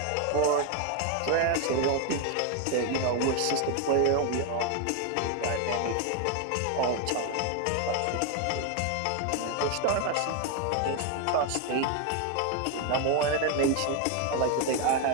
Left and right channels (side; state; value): both; different; correlation 0.01